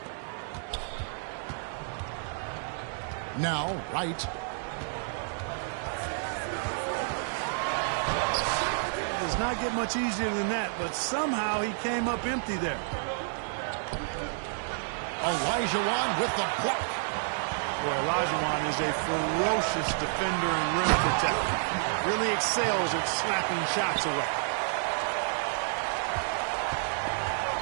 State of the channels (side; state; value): left; silent; digital silence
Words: Now, right. Does not get much easier than that, but somehow he came up empty there. Olajuwon with the block. Boy, Olajuwon is a ferocious defender and rim protector. Really excels at slapping shots away.